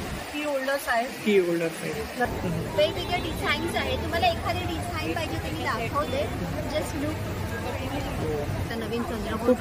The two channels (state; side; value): identical; both; correlation 1.00